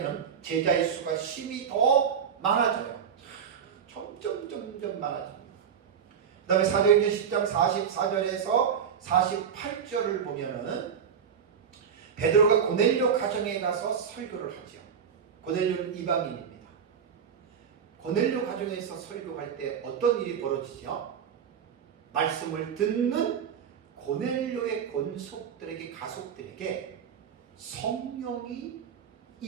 제자의 수가 심히 더 많아져요. 점점 많아집니다. 그 다음에 사도행전 10장 44절에서 48절을 보면은 베드로가 고넬료 가정에 가서 설교를 하죠. 고넬료는 이방인입니다. 고넬료 가정에서 설교할 때 어떤 일이 벌어지죠? 말씀을 듣는 고넬료의 권속들에게 가족들에게 성령이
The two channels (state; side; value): quieter; left; 7.5 dB